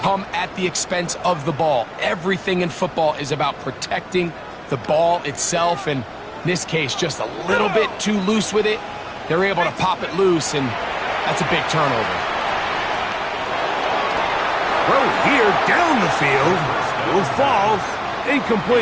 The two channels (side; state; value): both; identical; correlation 1.00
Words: come at the expense of the ball. Everything in football is about protecting the ball itself. And in this case, just a little bit too loose with it. They're able to pop it loose, and that's a big turnover. Throw here down the field. Will fall.